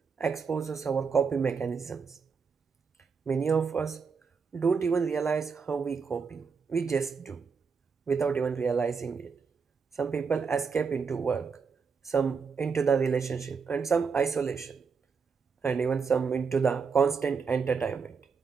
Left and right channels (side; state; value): left; quieter; 5.6 dB